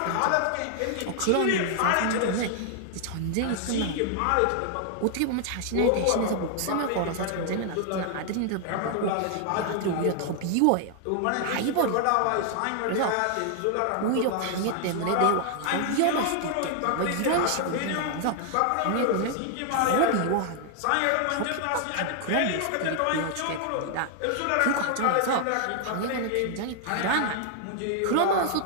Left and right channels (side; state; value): both; different; correlation 0.00